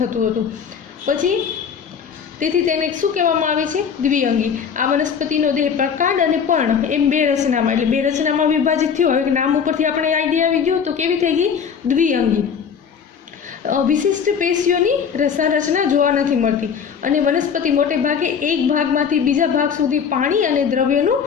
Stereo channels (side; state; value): right; quieter; 6.9 dB